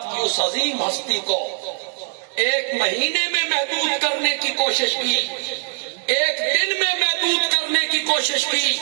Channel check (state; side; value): silent; left; 65 dB below the other